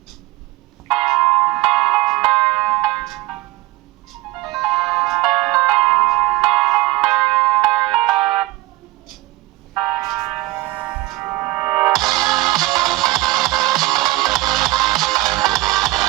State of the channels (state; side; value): quieter; left; 19.0 dB